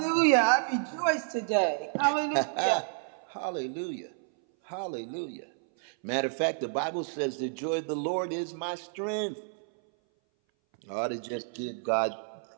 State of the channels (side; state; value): left; silent; 58 dB below the other